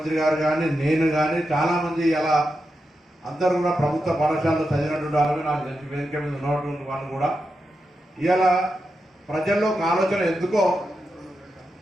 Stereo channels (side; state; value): both; normal; correlation 0.88